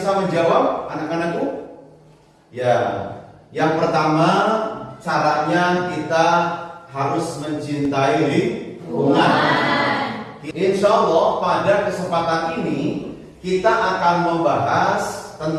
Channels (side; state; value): both; identical; correlation 1.00